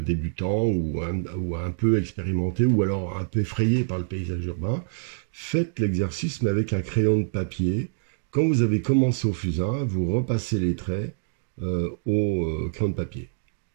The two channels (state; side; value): silent; left; digital silence